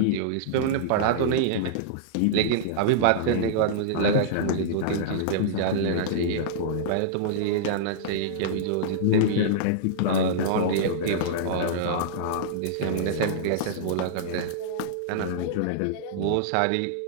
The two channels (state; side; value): different; both; correlation -0.02